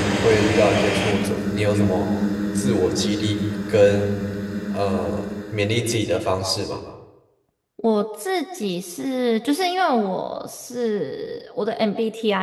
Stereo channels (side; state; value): both; identical; correlation 1.00